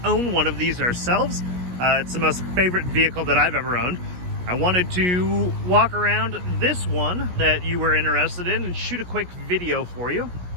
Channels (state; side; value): late; left; 17 ms